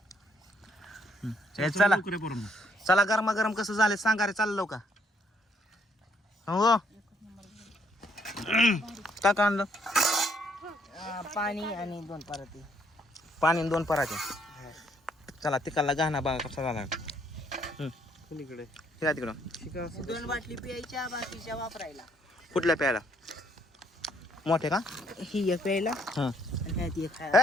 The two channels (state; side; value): normal; both; correlation 0.69